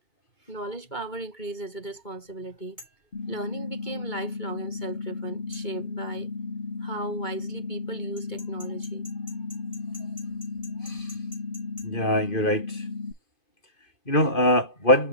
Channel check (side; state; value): right; late; 2.2 ms